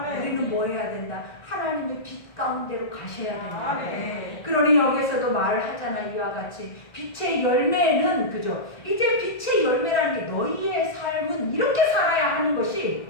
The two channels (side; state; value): right; late; 1.9 ms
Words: 우리는 뭐 해야 된다? 하나님의 빛 가운데로 가셔야 된다. 그러니 여기서도 말을 하잖아. 이와 같이 빛의 열매는, 그죠? 이제 빛의 열매라는 게 너희의 삶은 이렇게 살아야 하는 것이